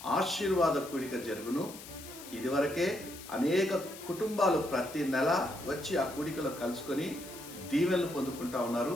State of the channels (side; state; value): left; noise; hiss, 15 dB below the sound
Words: ఆశీర్వాద కూడిక జరుగును. ఇదివరకే అనేక కుటుంబాలు ప్రతి నెల వచ్చి ఆ కూడికలో కలుసుకొని దీవెనలు పొందుకుంటా ఉన్నారు.